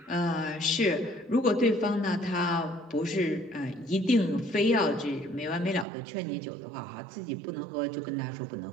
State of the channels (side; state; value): left; drops out; at 5.9 s